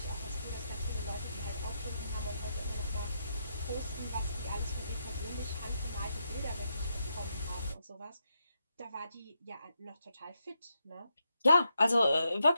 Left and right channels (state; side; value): inverted; both; correlation -0.82